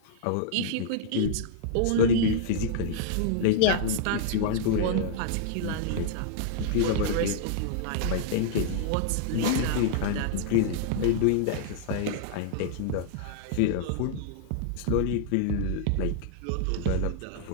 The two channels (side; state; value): both; different; correlation -0.01